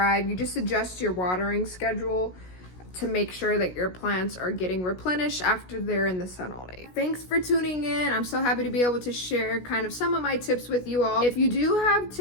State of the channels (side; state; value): right; late; 16 ms